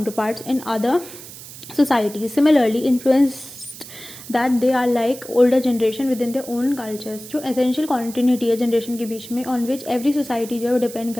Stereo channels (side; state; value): right; noise; hiss, 15 dB below the sound